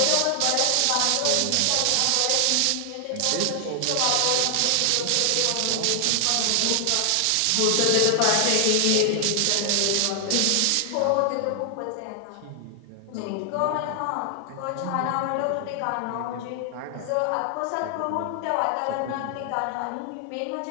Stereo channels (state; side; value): different; both; correlation 0.00